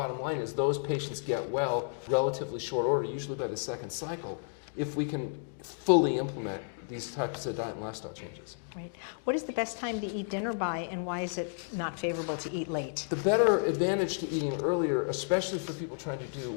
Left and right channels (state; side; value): silent; right; digital silence